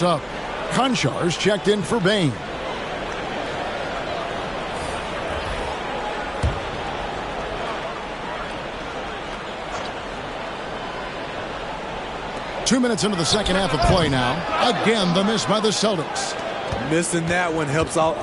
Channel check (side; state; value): both; identical; correlation 1.00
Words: Konchar's checked in for Bane. Two minutes into the second half of play now. Again, the miss by the Celtics. Missing that one helps out